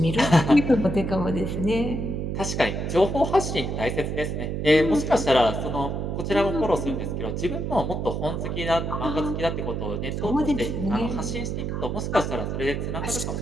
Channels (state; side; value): noise; right; hum, 2 dB below the sound